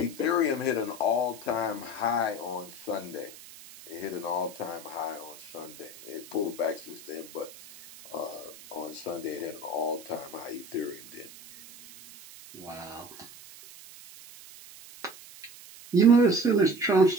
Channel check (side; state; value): right; noise; hiss, 18 dB below the sound